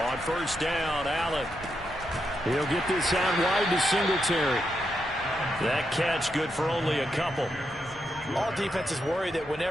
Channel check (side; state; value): both; normal; correlation 0.83